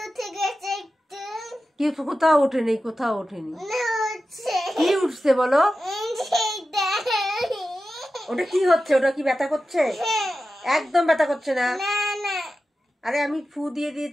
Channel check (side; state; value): both; normal; correlation 0.93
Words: কি? কোথাও ওঠেনি, কোথাও ওঠেনি। কি উঠছে বলো? ওটা কি হচ্ছে? ওটা কি ব্যথা করছে? একদম ব্যথা করছে না। আরে আমি ফু দিয়ে